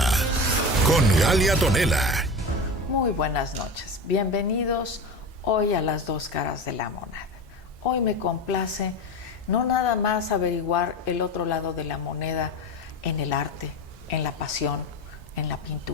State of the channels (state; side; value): normal; both; correlation 0.26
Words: con Galia Tonela. Muy buenas noches, bienvenidos hoy a las dos caras de la moneda. Hoy me complace no nada más averiguar el otro lado de la moneda en el arte, en la pasión, en la